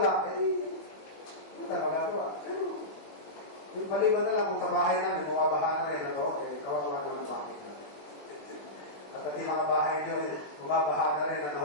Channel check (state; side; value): late; right; 20 ms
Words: punta, magagawa. Pero, yung maliban na lang kung sa bahay namin, bumabaha na rin ako, kawawa na ng bahay namin. At yung mga bahay nyo, bumabaha na rin